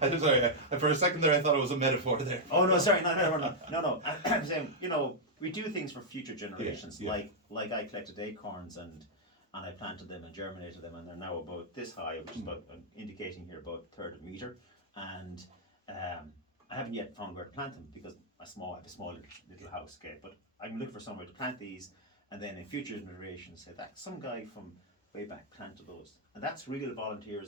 I'm sorry. For a second there, I thought it was a metaphor there. Oh no! Sorry. No. I'm saying we do things for future generations. Yeah. Like I collected acorns and I planted them and germinated them and they're now about this high, which is about indicating here about a third of a meter. And I haven't yet found where to plant them because I have a small little house. Okay, but I'm looking for somewhere to plant these, and then in future generations say that some guy from way back planted those. And that's real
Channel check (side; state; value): both; normal; correlation -0.05